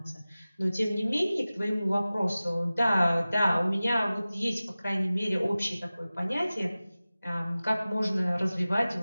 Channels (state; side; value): inverted; both; correlation -0.97